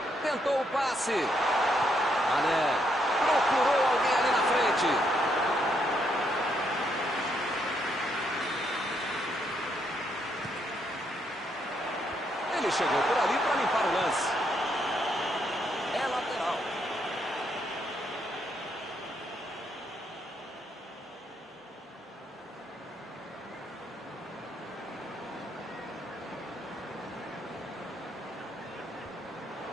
Tentou o passe. Mané procurou alguém ali na frente. Ele chegou por ali para limpar o lance. É lateral.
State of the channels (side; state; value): both; normal; correlation 0.75